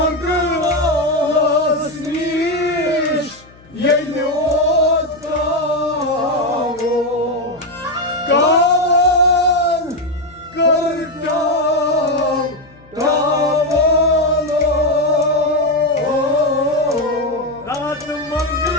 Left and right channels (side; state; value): left; noise; hum, 25 dB below the sound